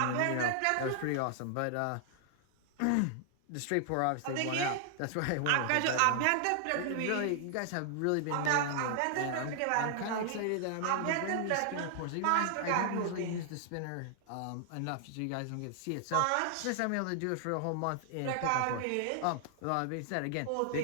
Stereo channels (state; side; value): different; both; correlation 0.00